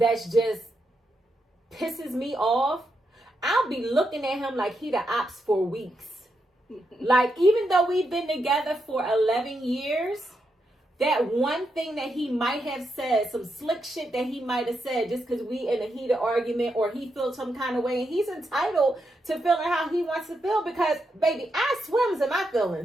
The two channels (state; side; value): normal; both; correlation 0.83